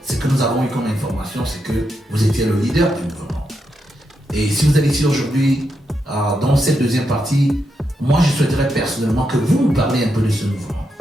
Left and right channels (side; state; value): both; normal; correlation 0.83